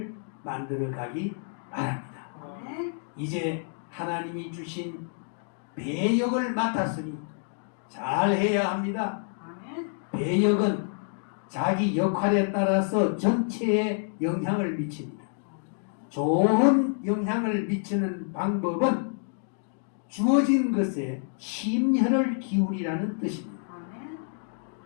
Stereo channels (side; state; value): right; silent; 59 dB below the other